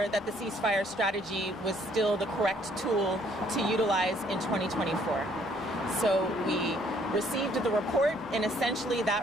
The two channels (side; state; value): left; noise; hum, 24 dB below the sound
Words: that the ceasefire strategy was still the correct tool to utilize in 2024. So we received the report, and essentially